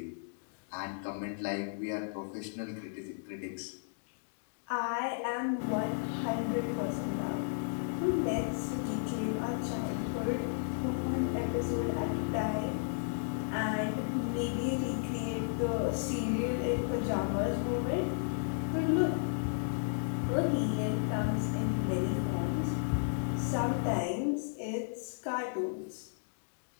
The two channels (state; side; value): silent; right; digital silence